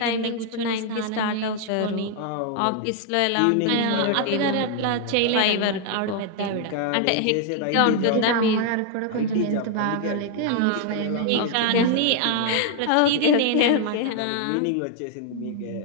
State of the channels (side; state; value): both; different; correlation 0.00